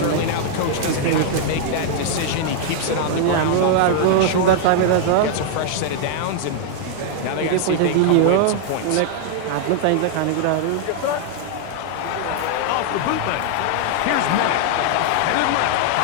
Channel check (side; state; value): both; different; correlation -0.01